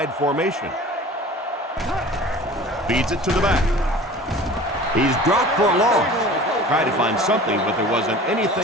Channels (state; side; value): normal; both; correlation 0.42